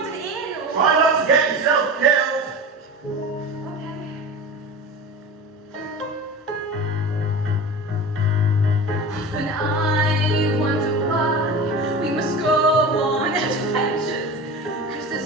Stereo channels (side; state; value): both; normal; correlation 0.31